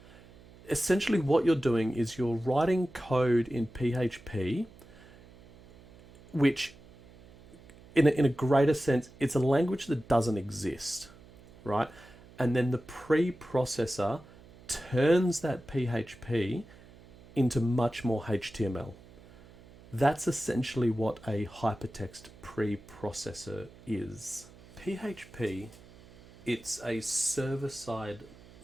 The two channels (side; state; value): right; noise; hum, 22 dB below the sound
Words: essentially what you're doing is you're writing code in PHP, which in a greater sense, it's a language that doesn't exist, right? And then the preprocessor turns that PHP into much more HTML. That's essentially what a hypertext preprocessor is. PHP, it's a server-side